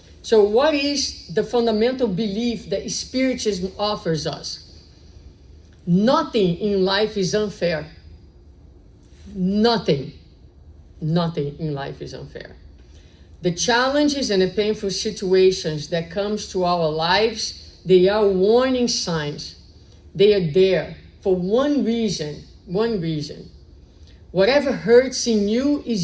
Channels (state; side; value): identical; both; correlation 1.00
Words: So what is the fundamental belief that Spiritism offers us? Nothing in life is unfair. Nothing in life is unfair. The challenges and the painful situations that comes to our lives, they are warning signs. They are there for one reason. Whatever hurts in you